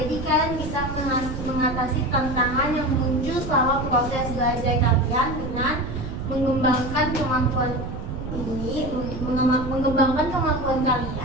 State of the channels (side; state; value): right; noise; rumble, 7 dB below the sound